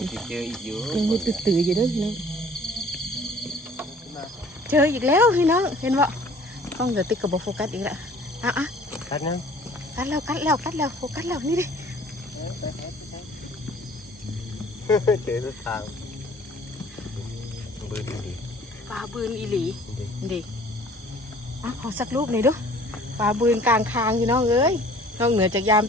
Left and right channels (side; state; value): both; normal; correlation 0.52